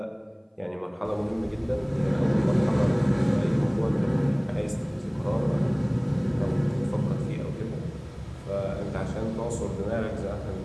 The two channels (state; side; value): identical; both; correlation 1.00